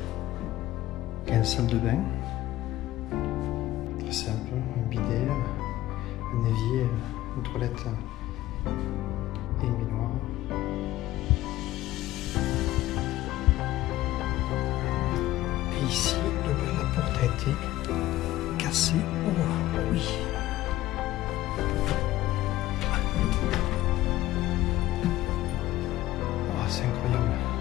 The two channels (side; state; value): right; quieter; 15.6 dB